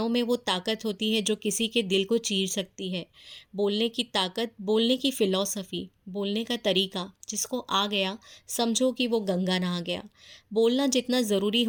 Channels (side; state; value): both; identical; correlation 1.00